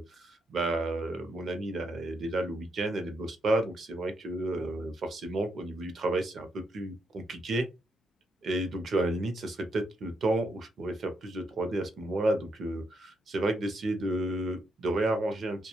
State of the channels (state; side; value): normal; both; correlation 0.79